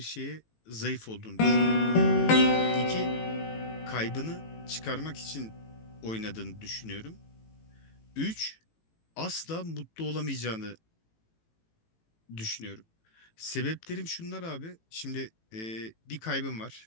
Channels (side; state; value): right; late; 18 ms